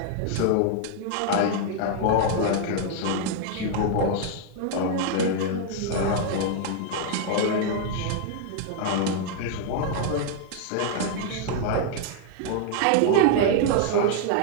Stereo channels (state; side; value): different; both; correlation 0.00